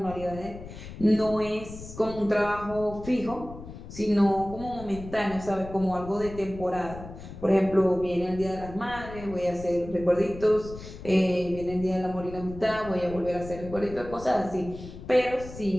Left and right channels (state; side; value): noise; left; rumble, 13 dB below the sound